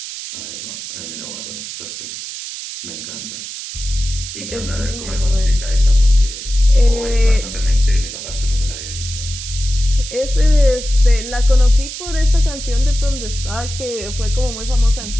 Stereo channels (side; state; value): right; noise; hiss, 9 dB below the sound